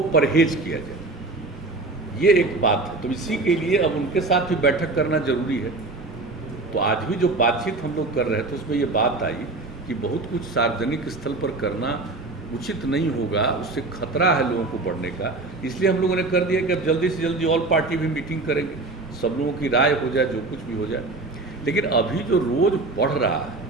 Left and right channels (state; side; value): quieter; left; 3.3 dB